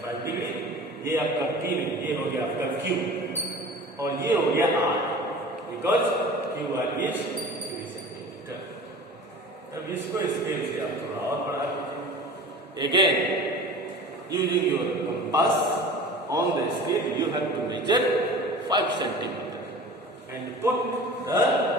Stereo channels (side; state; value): both; normal; correlation 0.39